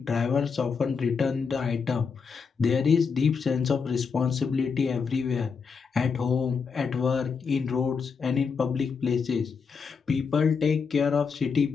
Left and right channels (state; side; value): quieter; right; 5.6 dB